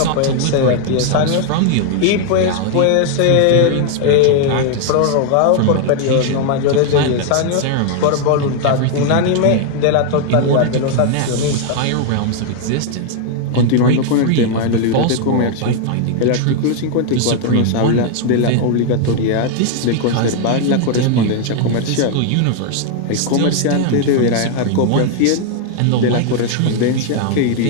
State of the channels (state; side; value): different; both; correlation 0.00